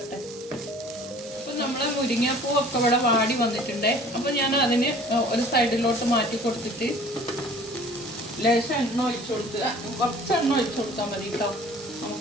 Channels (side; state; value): both; normal; correlation 0.49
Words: അപ്പം നമ്മൾ മുരിങ്ങാപ്പൂവൊക്കെ ഇവിടെ വാടി വന്നിട്ടുണ്ട്. അപ്പം ഞാൻ അതിന് ഒരു സൈഡിലോട്ട് മാറ്റി കൊടുത്തിട്ട് ലേശം എണ്ണ ഒഴിച്ചു കൊടുക്കുക. കുറച്ച് എണ്ണ ഒഴിച്ചു കൊടുത്താൽ മതി കേട്ടോ.